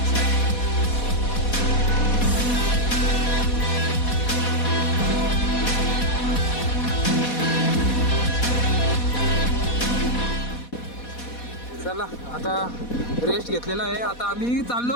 चला आता रेस्ट घेतलेला आहे. आता आम्ही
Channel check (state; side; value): late; right; 4.2 ms